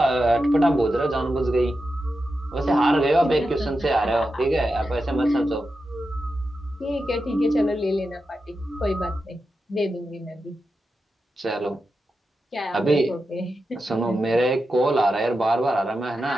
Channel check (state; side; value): normal; both; correlation 0.89